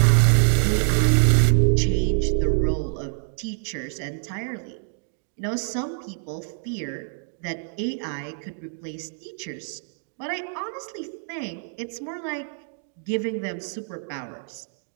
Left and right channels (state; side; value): silent; left; digital silence